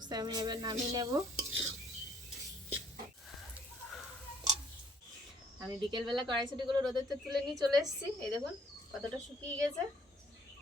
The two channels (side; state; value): both; normal; correlation 0.63